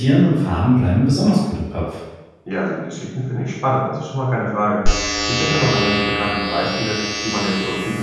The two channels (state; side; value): identical; both; correlation 1.00